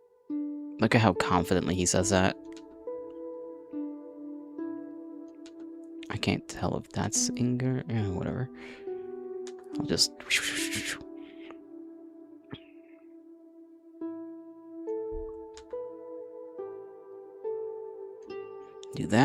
Look at how confidently he says that. I can't tell if that's anger. Whatever. I'll just do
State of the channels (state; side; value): identical; both; correlation 1.00